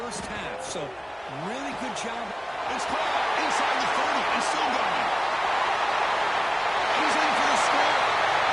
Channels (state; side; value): identical; both; correlation 1.00